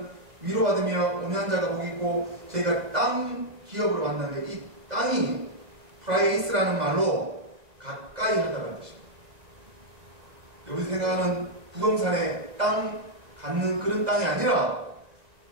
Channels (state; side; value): late; left; 2.0 ms